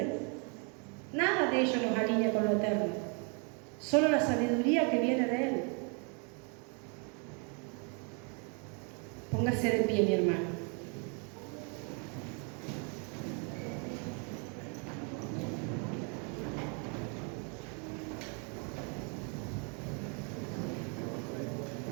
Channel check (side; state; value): left; quieter; 36.5 dB